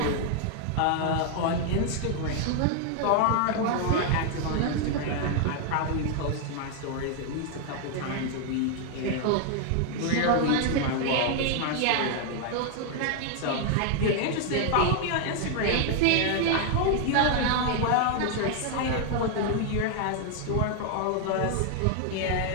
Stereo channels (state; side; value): different; both; correlation 0.00